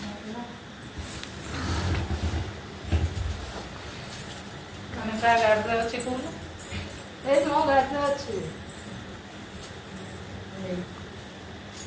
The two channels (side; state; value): both; identical; correlation 1.00